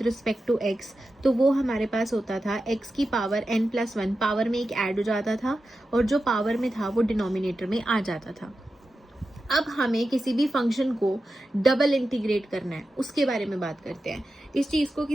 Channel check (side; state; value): both; normal; correlation 0.91